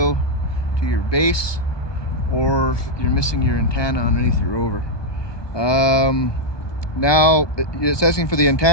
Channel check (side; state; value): right; late; 1.2 ms